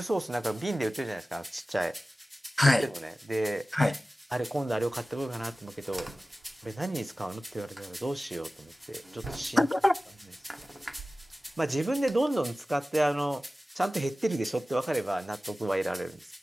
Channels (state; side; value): normal; both; correlation 0.96